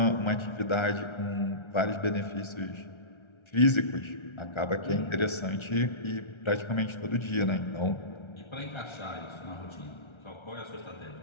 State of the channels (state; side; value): late; right; 1.3 ms